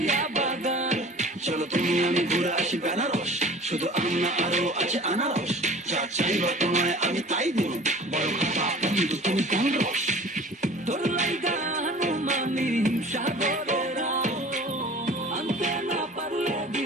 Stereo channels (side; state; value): both; normal; correlation 0.44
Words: বাগান। চলো তুমি আমি ঘুরে আসি বেনারস, শুধু আম না আরো আছে আনারস। যা চাইবা তোমায় আমি তাই দিব, বড় খাতা বন্ধু তুমি কোন রস। তোর লাইগা হনুমানি সাগরের আনতে না পারলে